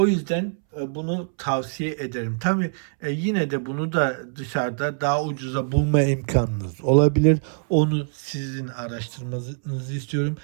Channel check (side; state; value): left; silent; 63 dB below the other